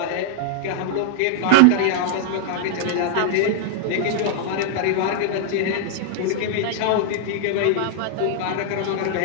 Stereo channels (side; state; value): both; different; correlation -0.01